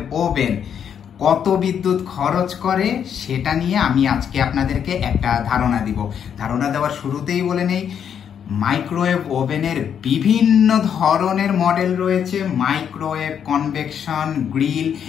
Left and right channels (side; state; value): right; quieter; 8.2 dB